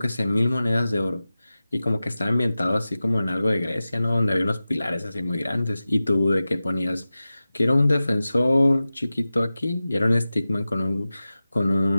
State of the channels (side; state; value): both; inverted; correlation -0.95